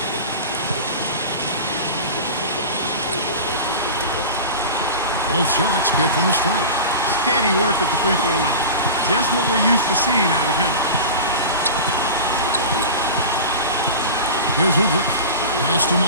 Both shots good from the strike. Steady work at the free throw line. Just what we're used to seeing out of him. Here's Udrich. Pass to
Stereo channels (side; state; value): both; inverted; correlation -0.31